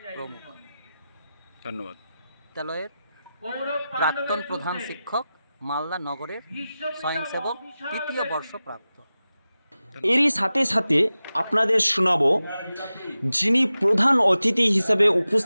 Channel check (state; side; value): inverted; both; correlation -0.94